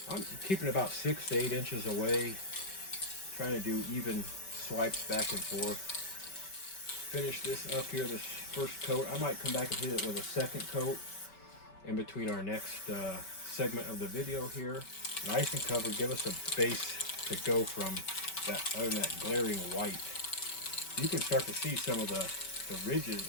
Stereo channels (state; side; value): late; right; 5.2 ms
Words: I'm keeping about 6 to 8 inches away, trying to do even swipes back and forth. Finish this up here, this first coat. I might come back and hit it with a second coat in between our next segment of the video here. Nice and covered, give us a base to go from other than that glaring white. You can start to see some of the ridges,